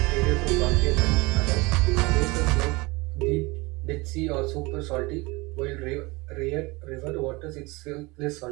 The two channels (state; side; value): quieter; left; 24.2 dB